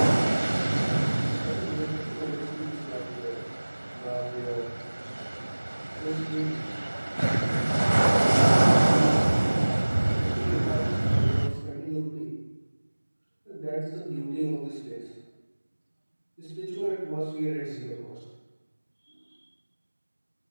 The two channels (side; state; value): both; inverted; correlation -1.00